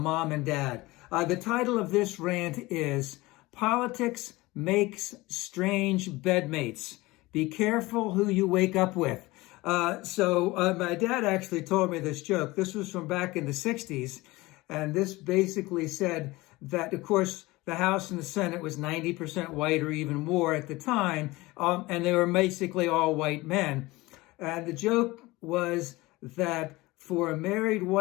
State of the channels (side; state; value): right; quieter; 20.8 dB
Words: and Dad. The title of this rant is Politics Makes Strange Bedmates. Be careful who you wake up with. My dad actually told me this joke. This was from back in the 60s. And this basically said that, of course, the House and the Senate was 90% white or even more at the time. And they were basically all white men. And the joke was that for a married